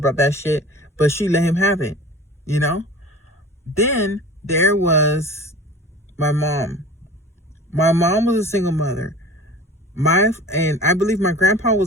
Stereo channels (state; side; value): normal; both; correlation 0.40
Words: that shit, but she let him have it, Then there was my mom. My mom was a single mother. And I believe my grandpa